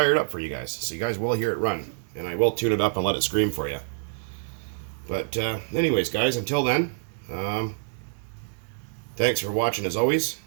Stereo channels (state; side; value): silent; left; digital silence